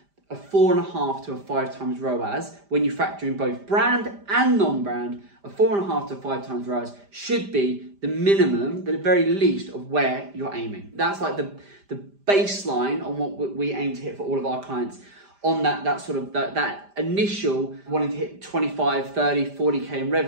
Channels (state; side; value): late; left; 5.0 ms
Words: a 4.5 to a 5 times ROAS. When you factor in both brand and non-brand, a 4.5 to 5 times ROAS should be the minimum, the very least of where you're aiming. That's like the baseline on what we aim to hit for all of our clients. On that initial wanting to hit 25, 30, 40k in